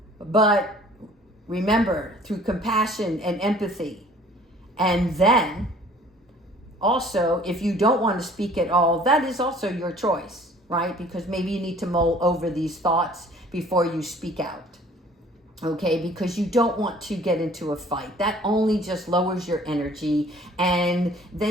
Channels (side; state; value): both; normal; correlation 0.52